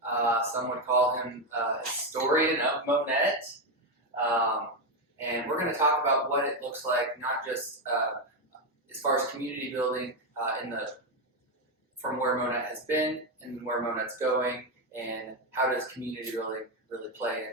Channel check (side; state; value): both; normal; correlation 0.07